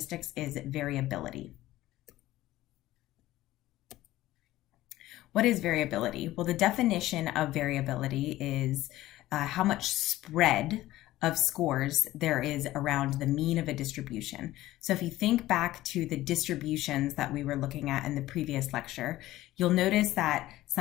is variability. What is variability? Well, the definition of variability is how much spread of scores there is around the mean of a distribution. So if you think back to the distributions that we were looking at in the previous lecture, you'll notice that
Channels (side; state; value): right; quieter; 15.9 dB